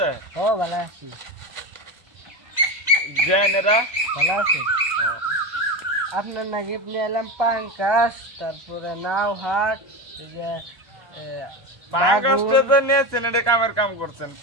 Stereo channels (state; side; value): late; left; 1.1 ms